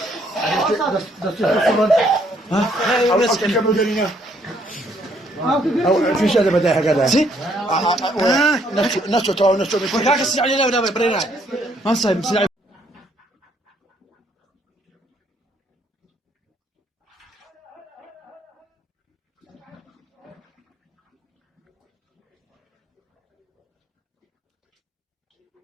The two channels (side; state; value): both; normal; correlation 0.68